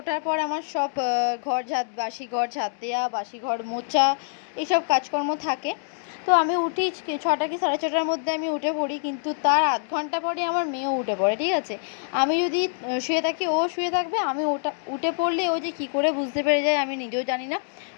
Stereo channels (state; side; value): silent; right; digital silence